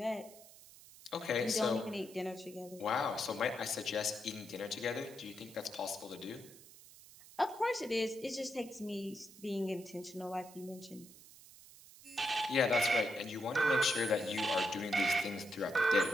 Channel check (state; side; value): noise; right; hiss, 20 dB below the sound